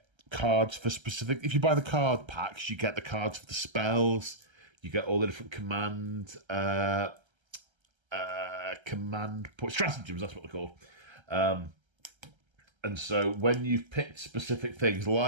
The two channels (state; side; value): late; left; 1.3 ms